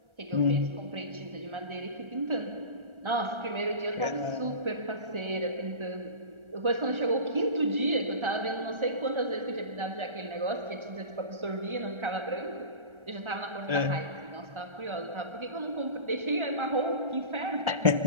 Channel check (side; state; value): left; late; 1.3 ms